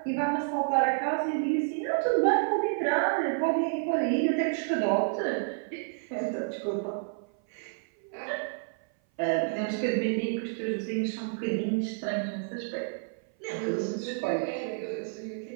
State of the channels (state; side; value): silent; left; 57 dB below the other